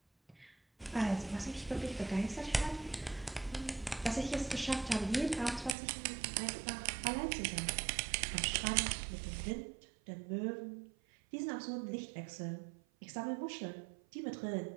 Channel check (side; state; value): left; drops out; at 5.8 s